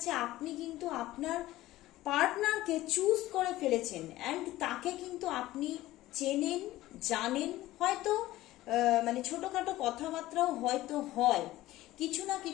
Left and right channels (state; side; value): quieter; right; 16.3 dB